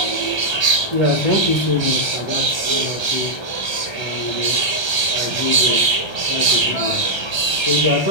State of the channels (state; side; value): late; right; 1.3 ms